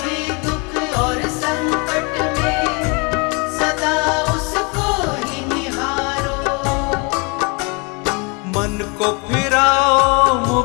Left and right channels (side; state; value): right; quieter; 31.3 dB